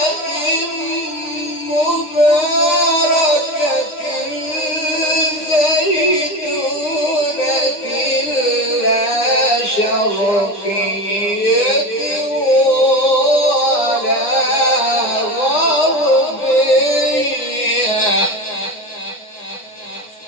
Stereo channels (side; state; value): right; late; 9.6 ms